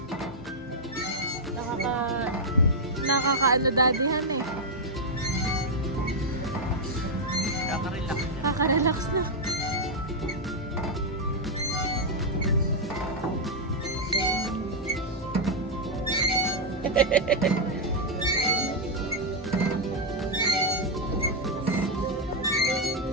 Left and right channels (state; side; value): normal; both; correlation -0.02